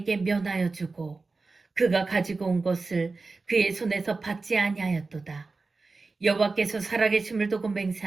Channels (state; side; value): quieter; left; 3.9 dB